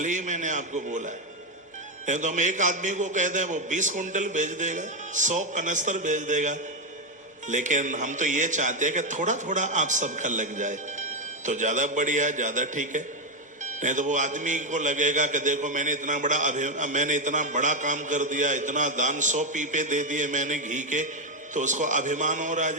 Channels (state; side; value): normal; both; correlation 0.06